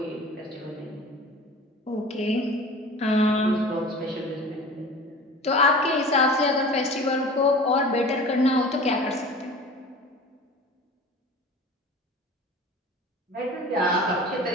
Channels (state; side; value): normal; both; correlation 0.40